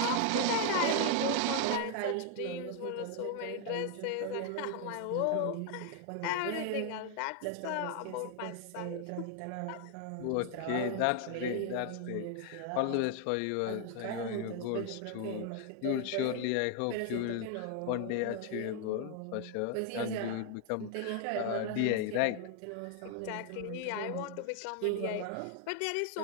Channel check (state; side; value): different; both; correlation 0.00